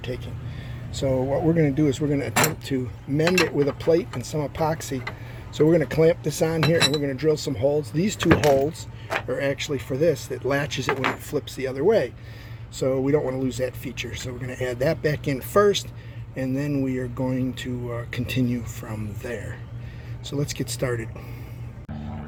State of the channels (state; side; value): identical; both; correlation 1.00